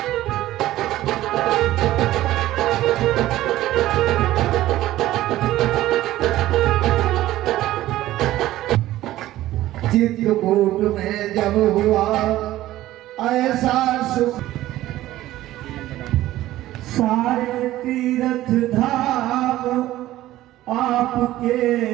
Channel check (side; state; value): left; quieter; 15.1 dB